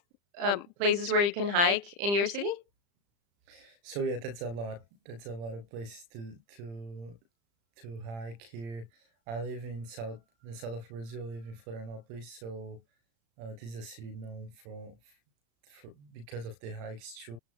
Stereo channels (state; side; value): late; left; 35 ms